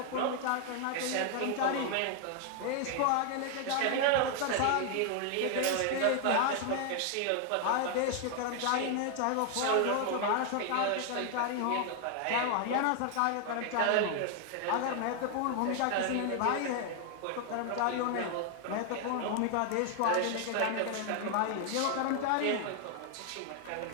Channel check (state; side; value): different; both; correlation 0.00